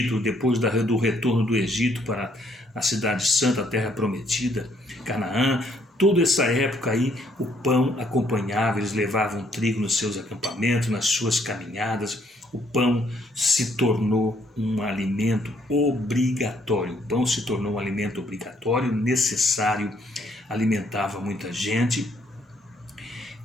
depois do retorno do Egito para a cidade santa, a terra prometida, Canaã. Toda essa época aí o pão acompanhava, eles levavam trigo nos seus acampamentos, nas suas caminhadas. O pão se tornou um alimento obrigatório. O pão se tornou um alimento obrigatório, necessário, alimentava muita gente.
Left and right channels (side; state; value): both; normal; correlation 0.68